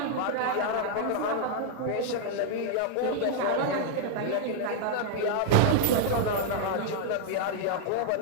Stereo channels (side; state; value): both; different; correlation -0.01